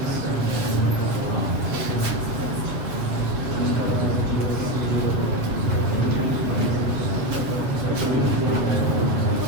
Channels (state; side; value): late; left; 7.6 ms